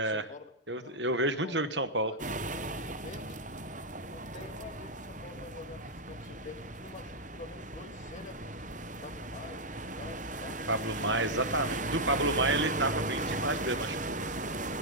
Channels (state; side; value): normal; both; correlation -0.02